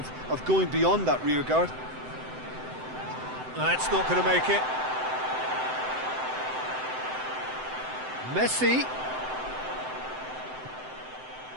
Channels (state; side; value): late; left; 7.8 ms